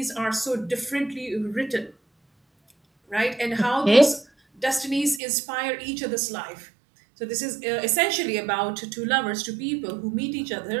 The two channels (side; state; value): left; drops out; at 5.2 s